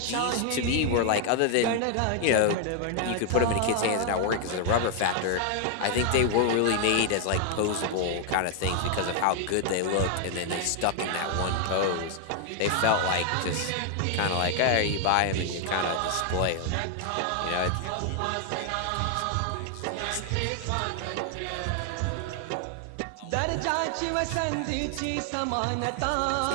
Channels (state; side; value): different; both; correlation 0.00